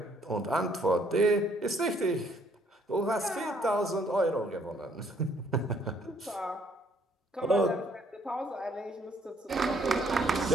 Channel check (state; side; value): normal; both; correlation 0.66